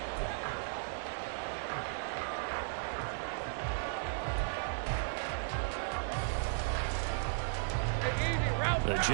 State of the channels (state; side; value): silent; left; digital silence